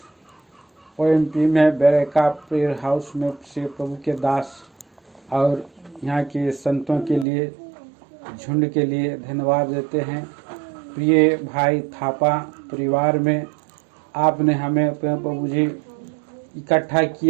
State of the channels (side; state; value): left; drops out; at 7.2 s